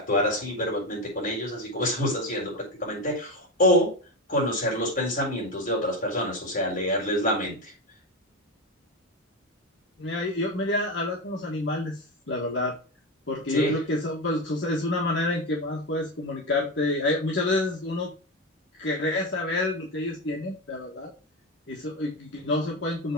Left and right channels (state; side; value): normal; both; correlation 0.16